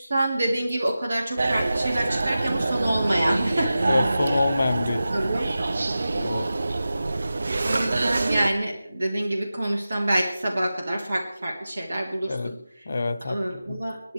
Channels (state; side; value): inverted; both; correlation -0.94